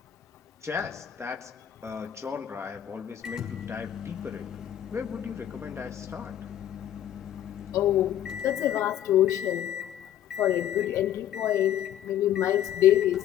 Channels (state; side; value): quieter; right; 11.1 dB